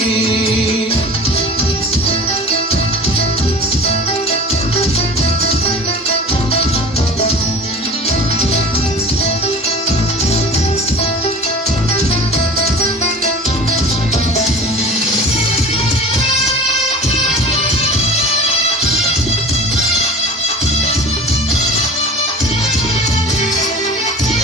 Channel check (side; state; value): both; normal; correlation 0.39